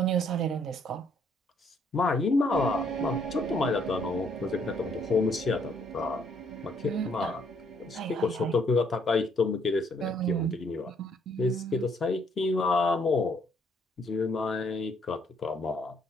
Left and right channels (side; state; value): both; normal; correlation 0.68